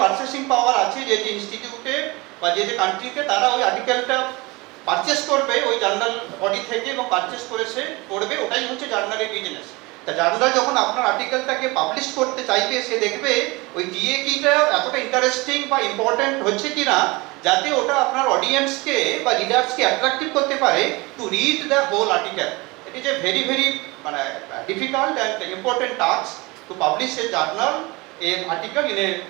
পারচেসিং পাওয়ার আছে, যে যে ইনস্টিটিউটে বা যে যে কান্ট্রিতে, তারা ওই আর্টিকেলটা পারচেস করবে ওই জার্নাল বডি থেকে এবং পারচেস করে সে পড়বে, ওটাই হচ্ছে জার্নালের বিজনেস। তা জার্নাল যখন আপনার আর্টিকেলটাকে পাবলিশ করতে চাইবে, সে দেখবে ওই ডিএ কিটা এতটা ইন্টারেস্টিং বা ইম্পর্টেন্ট হচ্ছে কিনা, যাতে ওটা আপনার অডিয়েন্সকে বা রিডার্সকে অ্যাট্রাক্টিভ করতে পারে to read the whole article. It is a very মানে difficult and important task to publish a journal a article in a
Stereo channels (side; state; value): left; quieter; 24.3 dB